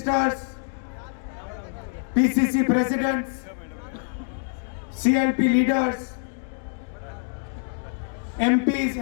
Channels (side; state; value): right; silent; 61 dB below the other